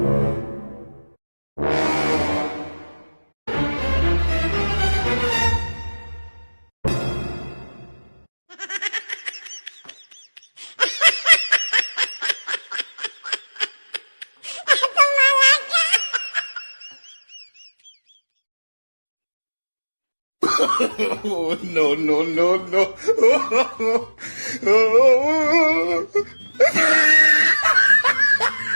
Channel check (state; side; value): inverted; both; correlation -1.00